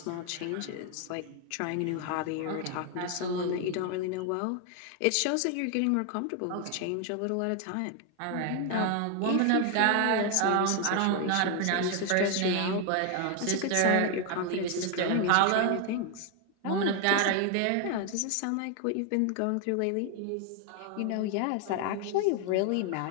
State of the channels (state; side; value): different; both; correlation 0.01